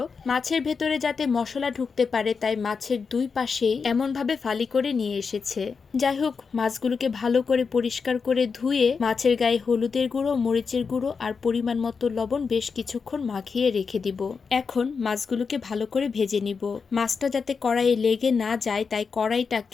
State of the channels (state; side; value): quieter; right; 5.4 dB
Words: মাছের ভেতরে যাতে মশলা ঢুকতে পারে তাই মাছের দুই পাশেই এমনভাবে ফালি করে নিয়ে এসেছে। যাই হোক, মাছগুলোকে ভালো করে পরিষ্কার করে ধুয়ে মাছের গায়ে হলুদের গুঁড়ো, মরিচের গুঁড়ো আর পরিমাণ মতো লবণ বেশ কিছুক্ষণ মাখিয়ে রেখে দিব। এখন মাছগুলোকে ভালো করে ভেজে নিব। মাছটা যাতে কড়াইয়ে লেগে না যায় তাই